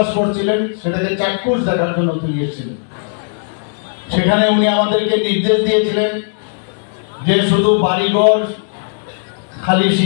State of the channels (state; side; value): silent; right; 69 dB below the other